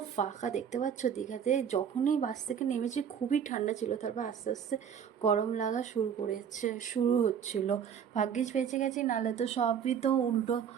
ফাঁকা, দেখতে পাচ্ছ দীঘাতে যখনই বাস থেকে নেমেছি খুবই ঠান্ডা ছিল, তারপর আস্তে আস্তে গরম লাগা শুরু হচ্ছিল। ভাগ্যিস বেঁচে গেছি, নাহলে তো সবই তো উল্টো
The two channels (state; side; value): quieter; left; 8.0 dB